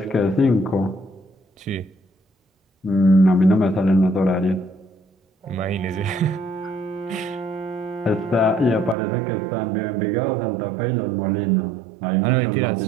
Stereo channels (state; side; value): drops out; left; at 9.0 s